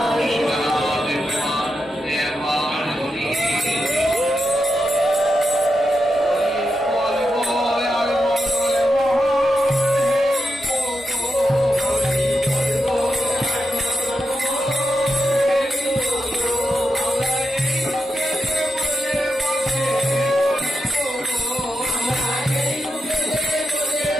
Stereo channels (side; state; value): both; normal; correlation 0.86